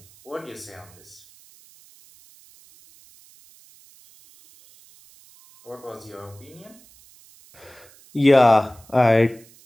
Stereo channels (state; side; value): noise; right; hiss, 26 dB below the sound